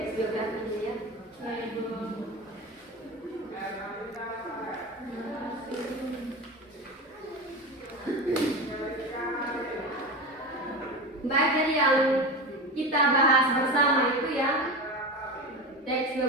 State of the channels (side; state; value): both; normal; correlation 0.25